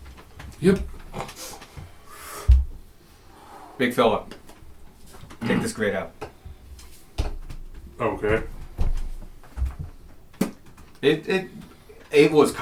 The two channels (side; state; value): both; identical; correlation 1.00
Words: Yep. Big fella. Take this grate out. Okay. It was